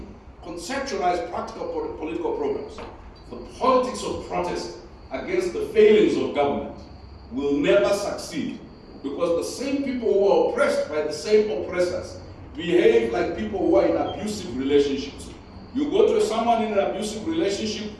conceptualize practical political programs, the politics of protest against the failings of government will never succeed, because the same people who are oppressed by the same oppressors behave like people who are in abusive relationships. You go to someone in an abusive relationship,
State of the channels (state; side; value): identical; both; correlation 1.00